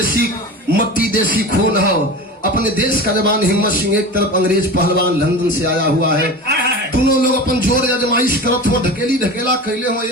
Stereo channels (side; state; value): both; normal; correlation 0.31